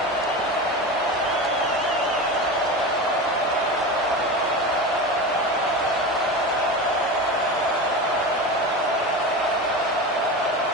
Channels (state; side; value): normal; both; correlation 0.26